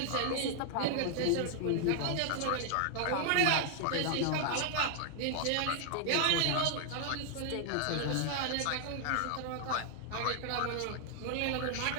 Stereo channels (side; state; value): both; different; correlation 0.00